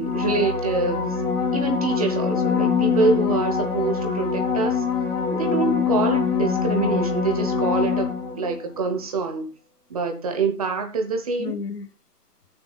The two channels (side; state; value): both; normal; correlation 0.31